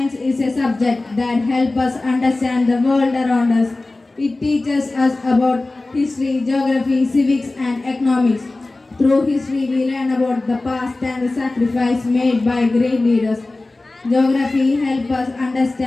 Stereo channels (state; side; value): quieter; right; 3.1 dB